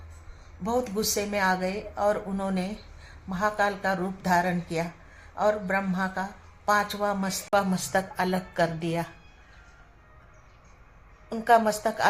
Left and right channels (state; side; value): identical; both; correlation 1.00